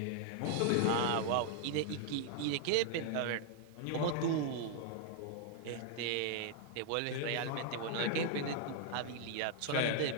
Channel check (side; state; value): both; different; correlation 0.00